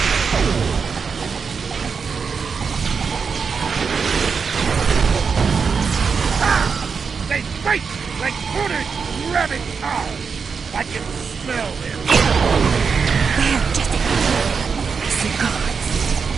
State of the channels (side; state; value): left; quieter; 5.7 dB